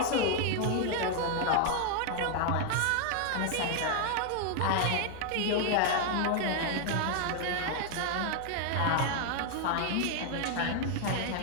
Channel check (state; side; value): different; both; correlation 0.00